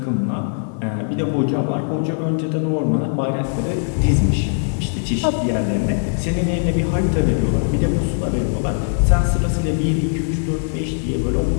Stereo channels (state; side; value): silent; right; digital silence